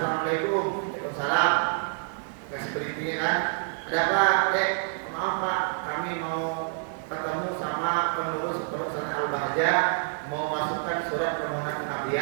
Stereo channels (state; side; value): silent; left; digital silence